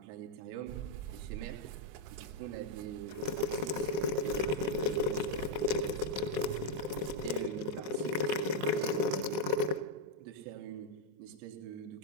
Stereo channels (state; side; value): late; left; 26 ms